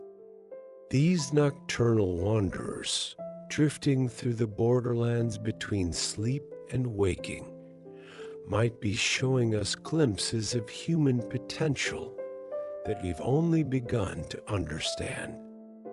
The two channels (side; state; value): both; identical; correlation 1.00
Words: These nocturnal wanderers, drifting through the borderlands between sleep and waking, might be showing us glimpses of human potential that we've only begun to understand.